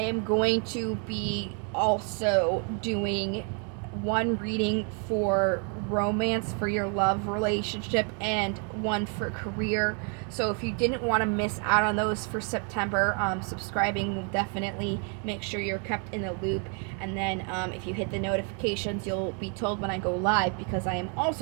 going to be also doing one reading for romance, for your love relationship, and one for career. So if you didn't want to miss out on those for September, subscribing will definitely make sure you're kept in the loop. And then if you hit the notifications, you'll be told when I go live, because I am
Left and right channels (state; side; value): quieter; left; 39.2 dB